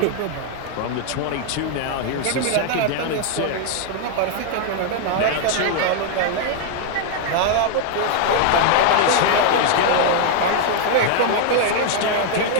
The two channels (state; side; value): different; both; correlation 0.00